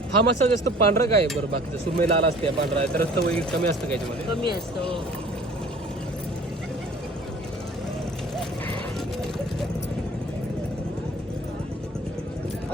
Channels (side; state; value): both; normal; correlation 0.49